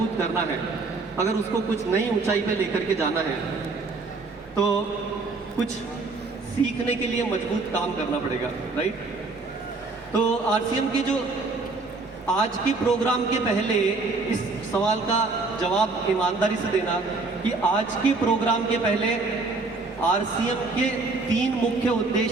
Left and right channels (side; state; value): left; quieter; 3.7 dB